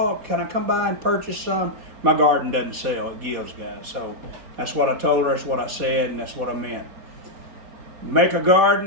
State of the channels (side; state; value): left; late; 4.1 ms